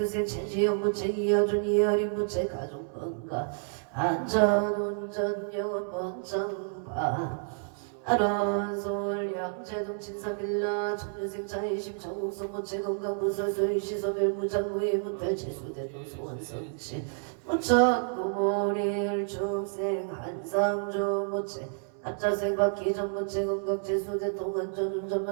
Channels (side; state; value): left; silent; 58 dB below the other